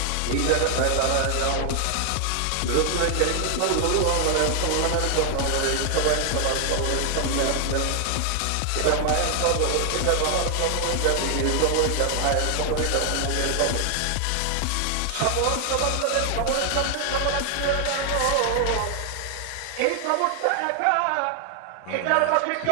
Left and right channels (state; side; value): different; both; correlation 0.00